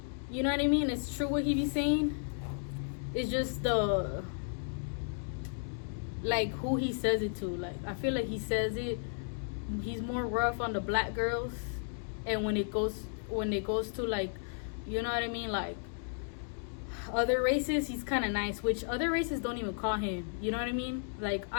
You know what I mean? It's true what he be saying. It's just like, who he says it to. Like, I feel like he's more rough on the black girls, and when it goes to, like, you know what I mean, like, other races, he's kind of nice, which other races don't even call him. You know what I mean? Like,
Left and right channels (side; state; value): right; silent; digital silence